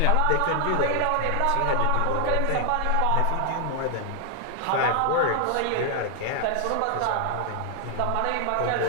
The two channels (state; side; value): different; both; correlation 0.00